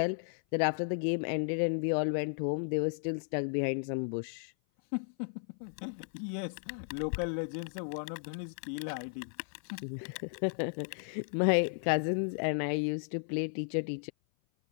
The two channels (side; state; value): right; silent; 55 dB below the other